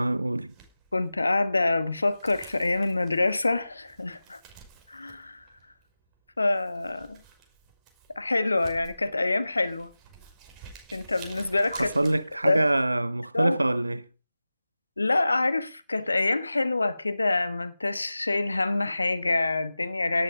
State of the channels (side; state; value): both; inverted; correlation -0.96